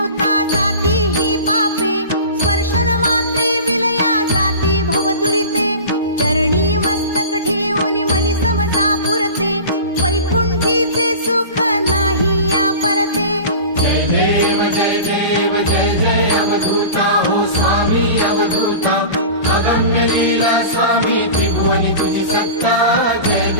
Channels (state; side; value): inverted; both; correlation -0.35